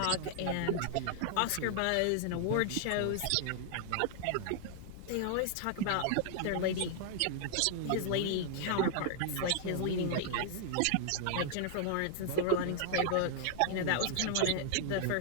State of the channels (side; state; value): both; different; correlation -0.01